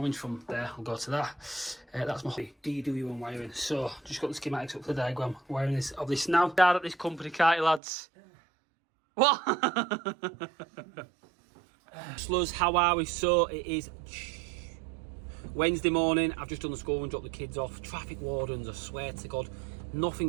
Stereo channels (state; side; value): drops out; left; at 7.8 s